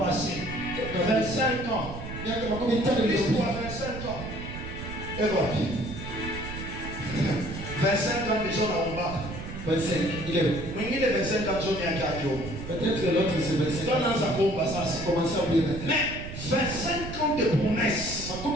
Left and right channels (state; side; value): noise; right; rumble, 9 dB below the sound